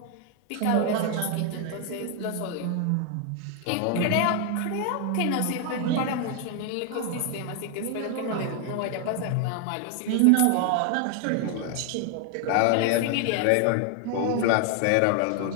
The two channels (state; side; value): different; both; correlation 0.00